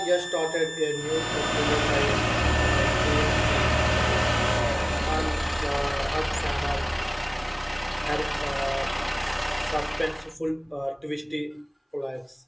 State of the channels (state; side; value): identical; both; correlation 1.00